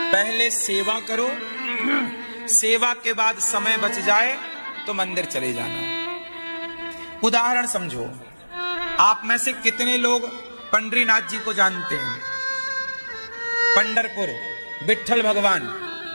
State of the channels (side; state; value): both; inverted; correlation -1.00